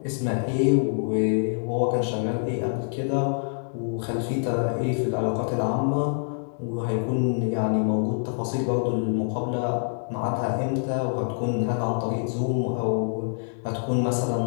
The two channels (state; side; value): silent; right; digital silence